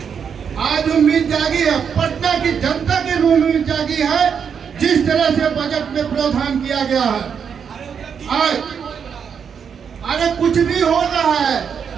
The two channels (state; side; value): quieter; left; 7.0 dB